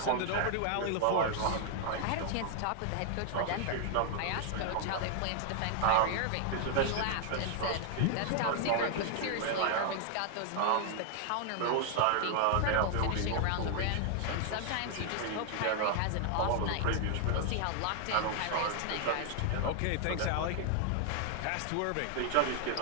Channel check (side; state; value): both; different; correlation 0.00